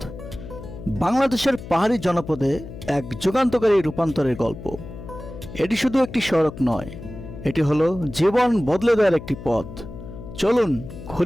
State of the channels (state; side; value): noise; left; hum, 13 dB below the sound